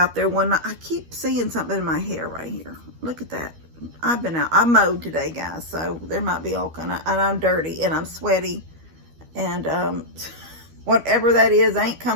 there when I keep seeing something in my hair right here. Look at that. I've been out. I mowed today, guys, so there might be all kind of, and I'm dirty and I'm sweaty. And whatever that is ain't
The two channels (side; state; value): left; late; 12 ms